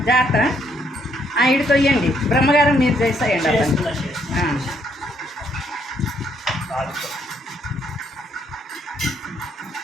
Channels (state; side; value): normal; both; correlation 0.71